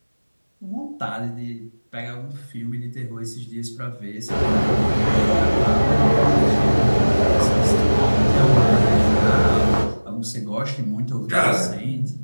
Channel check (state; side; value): inverted; both; correlation -1.00